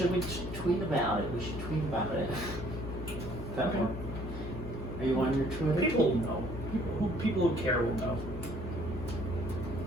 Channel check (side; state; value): left; noise; hum, 8 dB below the sound